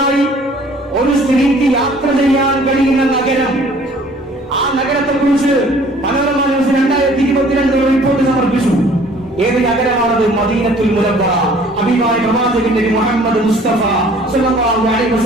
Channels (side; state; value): both; normal; correlation 0.54